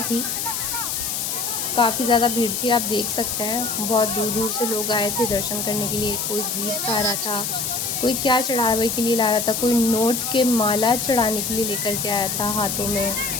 थी, काफ़ी ज़्यादा भीड़ थी। आप देख सकते हैं बहुत दूर दूर से लोग आए थे दर्शन करने के लिए। कोई गीत गा रहा था, कोई क्या चढ़ावे के लिए ला रहा था, कोई नोट के माला चढ़ाने के लिए लेकर के आया था हाथों में,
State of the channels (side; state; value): left; noise; hiss, 2 dB below the sound